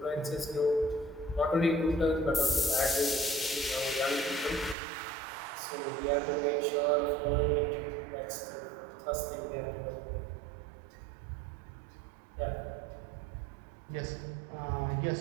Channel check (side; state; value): left; drops out; at 4.8 s